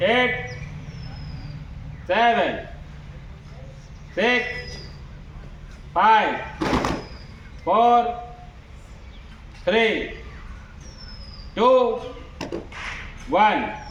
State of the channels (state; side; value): identical; both; correlation 1.00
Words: 8, 7, 6, 5, 4, 3, 2, 1.